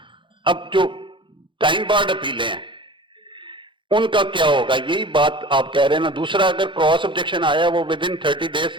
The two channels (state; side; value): late; left; 0.24 ms